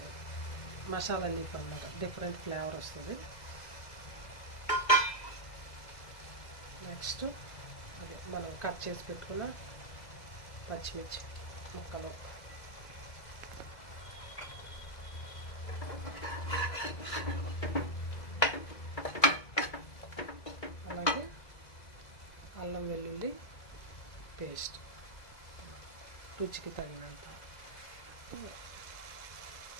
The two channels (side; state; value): right; late; 2.0 ms